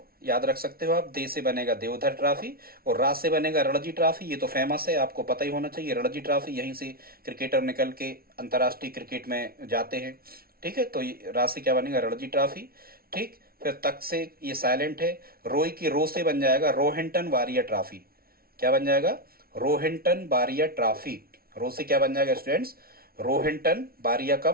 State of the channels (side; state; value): left; late; 0.44 ms